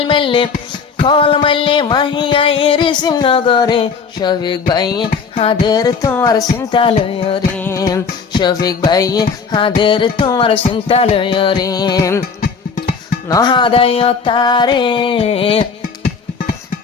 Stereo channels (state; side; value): quieter; right; 5.5 dB